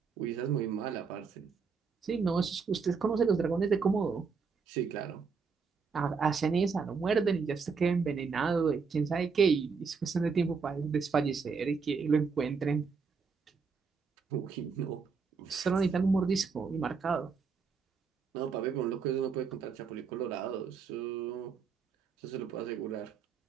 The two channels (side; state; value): left; quieter; 5.4 dB